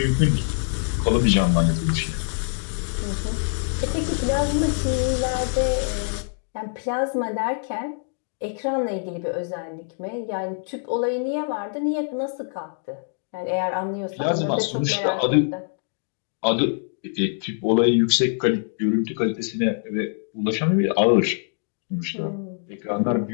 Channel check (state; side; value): silent; right; 62 dB below the other